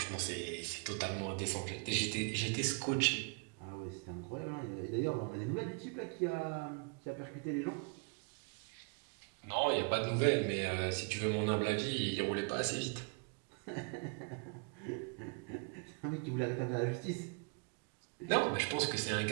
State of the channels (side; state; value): left; quieter; 36.6 dB